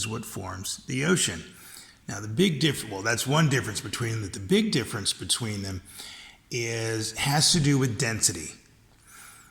what forms the ocean. Now the big difference, well, that's one difference between them. The big difference between them has to do with density.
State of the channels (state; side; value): identical; both; correlation 1.00